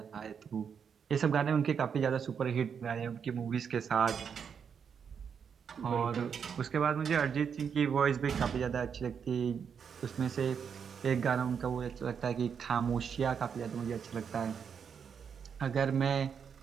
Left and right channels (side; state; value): left; quieter; 7.0 dB